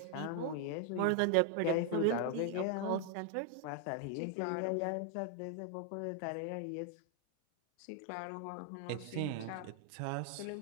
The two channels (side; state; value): both; different; correlation 0.00